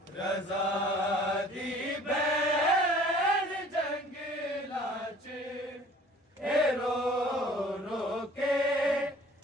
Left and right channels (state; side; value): normal; both; correlation 0.51